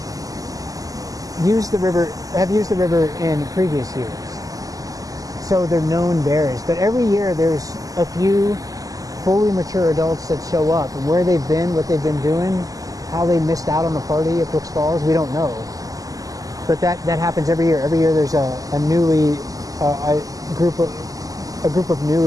have used the river in previous years. So they're known bears. But every year there's a few fully mature adults that show up, and where they've been, what they've been doing, how they missed out on the party at Brooks Falls, we don't know. But that happens every year. Every year there's a group of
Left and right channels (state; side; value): late; left; 0.17 ms